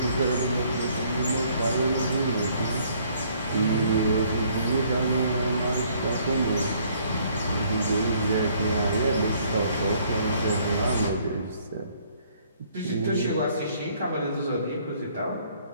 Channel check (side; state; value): both; inverted; correlation -0.63